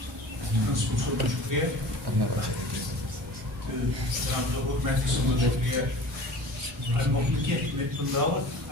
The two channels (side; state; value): both; normal; correlation 0.41